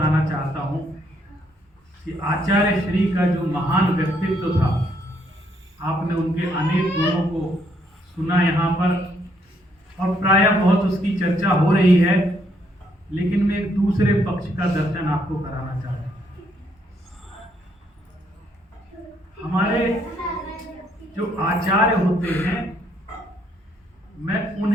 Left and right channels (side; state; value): both; normal; correlation 0.71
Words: चाहता हूं कि आचार्य श्री का जो महान व्यक्तित्व था, आपने उनके अनेक गुणों को सुना यहाँ पर और प्रायः बहुत उसकी चर्चा हो रही है, लेकिन मैं एक दूसरे पक्ष का दर्शन आपको कराना चाहता हूँ। हमारे जो आचार्य होते हैं, मैं